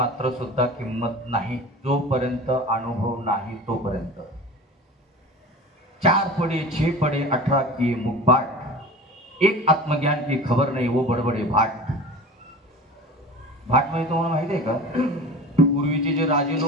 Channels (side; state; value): both; normal; correlation 0.36